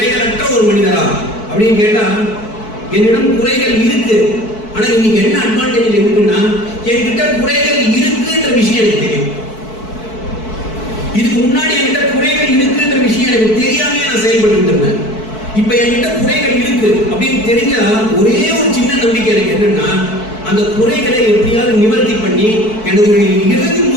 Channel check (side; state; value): right; late; 4.6 ms